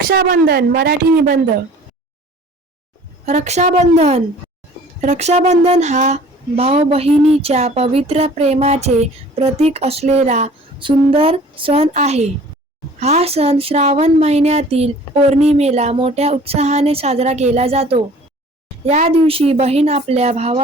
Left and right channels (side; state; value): both; normal; correlation 0.49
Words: मराठी निबंध. रक्षाबंधन. रक्षाबंधन हा भाऊ बहिणीच्या पवित्र प्रेमाचे प्रतीक असलेला सुंदर सण आहे. हा सण श्रावण महिन्यातील पौर्णिमेला मोठ्या उत्साहाने साजरा केला जातो. या दिवशी बहीण आपल्या